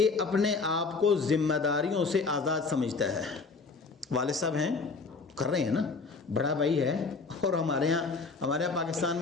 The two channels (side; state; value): right; quieter; 4.3 dB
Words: اپنے آپ کو ذمہ داریوں سے آزاد سمجھتا ہے۔ والد صاحب ہیں، کر رہے ہیں نا، بڑا بھائی ہے، اور ہمارے یہاں پاکستان